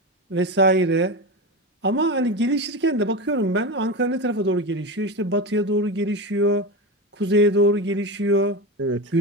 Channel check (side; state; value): both; normal; correlation 0.20